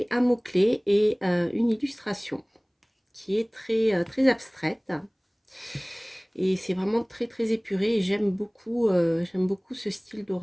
un mot-clé et une illustration qui est très abstraite. Et c'est vraiment très épuré et j'aime beaucoup ce style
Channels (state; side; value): identical; both; correlation 1.00